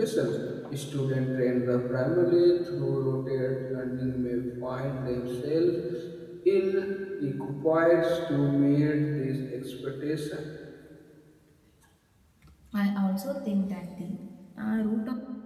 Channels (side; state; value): both; identical; correlation 1.00